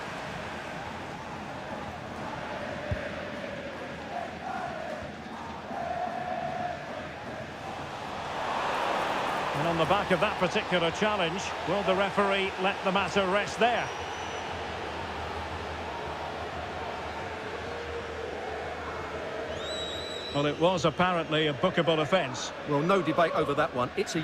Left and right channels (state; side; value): identical; both; correlation 1.00